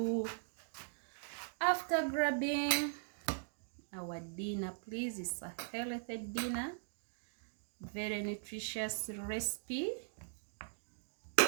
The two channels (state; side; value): silent; left; digital silence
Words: after grabbing our dinner, please. It's a healthy dinner, very nutritious recipe.